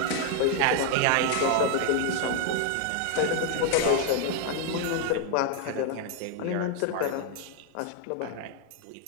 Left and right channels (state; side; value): different; both; correlation 0.00